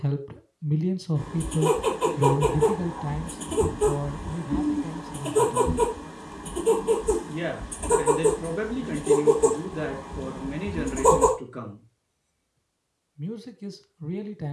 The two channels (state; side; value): identical; both; correlation 1.00